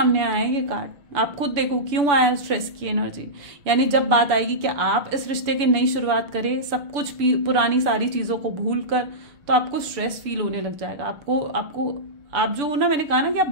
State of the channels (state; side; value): late; left; 7.0 ms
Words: आया है ये कार्ड, आप खुद देखो क्यों आया स्ट्रेस की एनर्जी। यानी जब बात आएगी कि आप इस रिश्ते की नई शुरुआत करें, सब कुछ पुरानी सारी चीजों को भूल कर, तो आपको स्ट्रेस फील होने लग जाएगा। आप जो हो ना, मैंने कहा ना कि